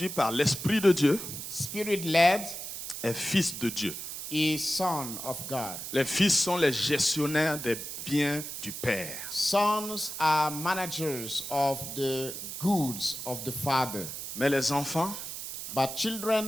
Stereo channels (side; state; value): right; noise; hiss, 7 dB below the sound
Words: par l'Esprit de Dieu, Spirit-led, est fils de Dieu. is son of God. Les fils sont les gestionnaires des biens du Père. Sons are managers of the goods of the Father. Mais les enfants, But children,